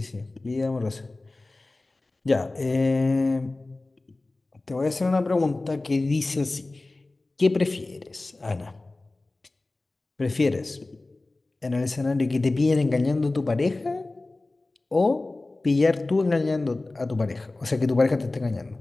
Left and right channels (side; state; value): right; quieter; 3.1 dB